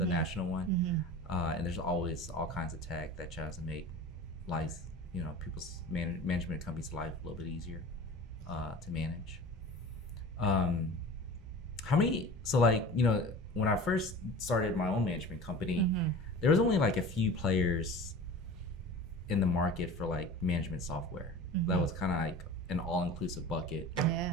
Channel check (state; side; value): normal; both; correlation 0.37